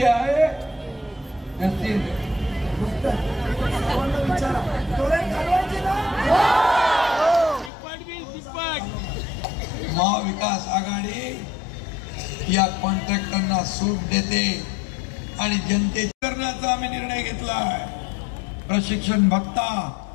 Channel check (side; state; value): right; drops out; at 7.7 s